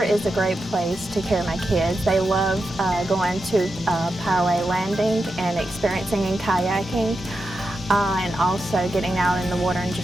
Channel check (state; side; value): normal; both; correlation 0.88